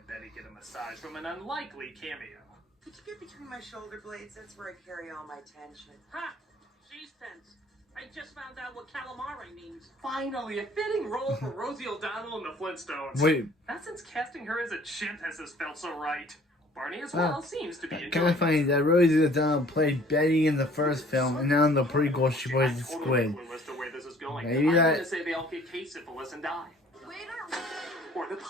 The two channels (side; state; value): both; normal; correlation 0.54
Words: Betty get a massage from an unlikely cameo. Could you get between my shoulder blades? That's where I carry all my tension. Ha! She's tense. I just found out what calamari means. Finally, a fitting role for Rosie O'Donnell in the Flintstones. Wait, Not since casting her as a chimp has this felt so right. Barney as well seems to be kind enjoying of funny that Rosie O'Donnell played Betty in the first film, and now in the prequel she plays I'm the totally squid. clueless to where this is going. Maybe I'm that- gonna say they all get case syphilis and die. Waiter! Or the